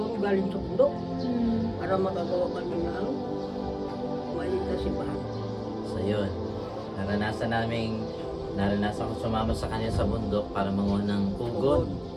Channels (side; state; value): both; identical; correlation 1.00